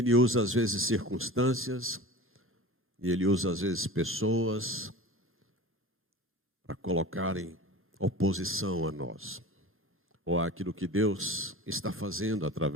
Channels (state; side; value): normal; both; correlation 0.35